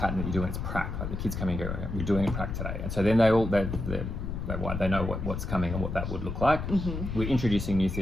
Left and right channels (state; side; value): noise; left; rumble, 4 dB below the sound